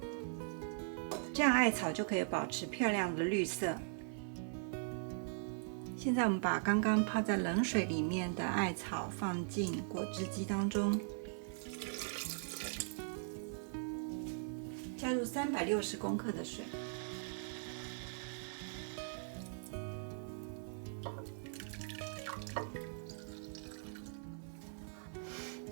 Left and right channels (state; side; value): silent; left; 51 dB below the other